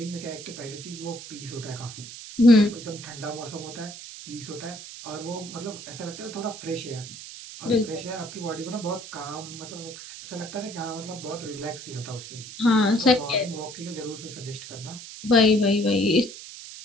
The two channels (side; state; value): right; noise; hiss, 13 dB below the sound